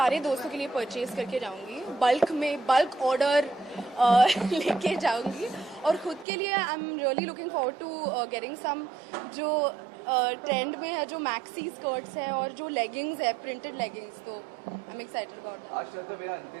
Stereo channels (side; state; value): left; drops out; at 6.2 s